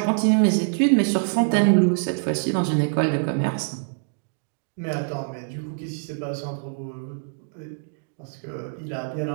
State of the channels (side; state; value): left; silent; digital silence